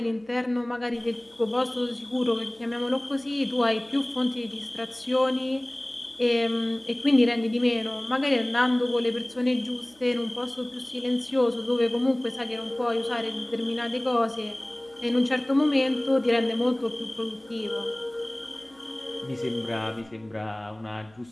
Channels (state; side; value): noise; right; hum, 29 dB below the sound